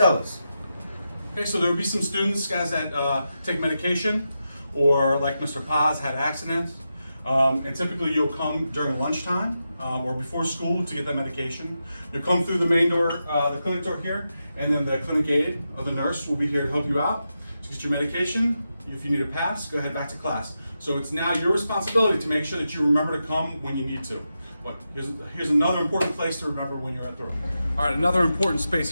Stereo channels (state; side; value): inverted; both; correlation -0.88